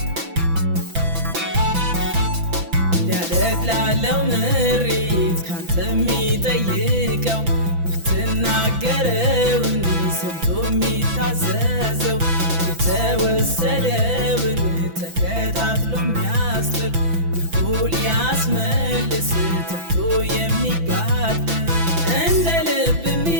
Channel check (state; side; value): late; left; 6.0 ms